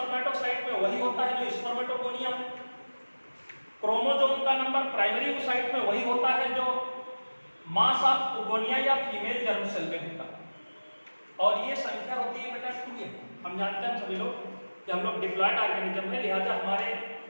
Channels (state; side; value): inverted; both; correlation -1.00